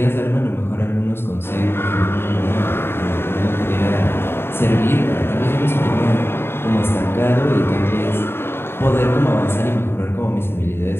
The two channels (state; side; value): late; right; 0.11 ms